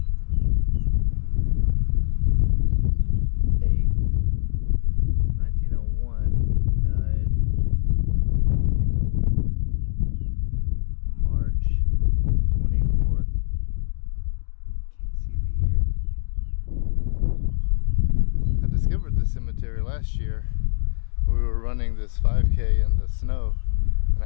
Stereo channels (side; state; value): right; silent; digital silence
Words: 8th, 1901, died March 24th. Can't see the year. I discovered this cemetery last year. We were running this 5K in the snow, and